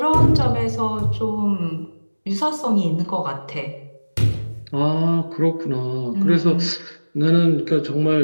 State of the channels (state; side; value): inverted; both; correlation -1.00